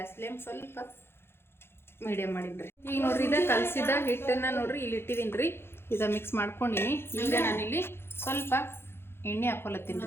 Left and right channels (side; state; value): right; late; 0.11 ms